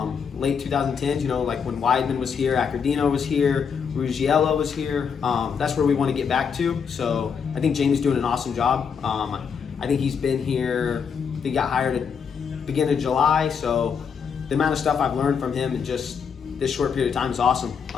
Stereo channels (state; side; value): quieter; right; 6.6 dB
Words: late 2010s. Like when Weidman was here, Accordino was here, Ruggiello was here. That's where we want to get back to. So I think Jamie's doing an awesome job. I think he's been here. He got hired at the beginning of July. So the amount of stuff I've learned from him in just this short period of time is awesome.